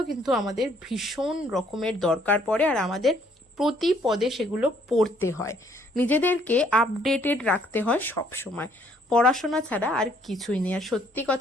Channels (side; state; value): both; normal; correlation 0.65